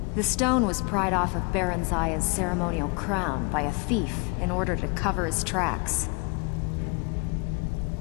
The stone was pried off of Baron Zaya's ceremonial crown by a thief in order to cover his tracks.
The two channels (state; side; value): quieter; right; 32.6 dB